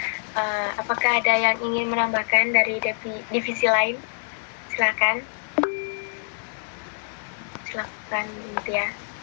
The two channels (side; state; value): right; silent; 61 dB below the other